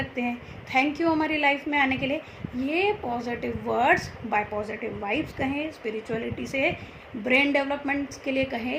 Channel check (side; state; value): both; identical; correlation 1.00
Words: हैं, थैंक यू हमारी लाइफ में आने के लिए। ये positive words by positive vibes कहें, स्पिरिचुअलिटी से ब्रेन डेवलपमेंट के लिए